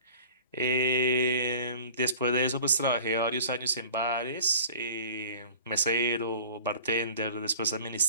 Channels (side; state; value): both; inverted; correlation -0.43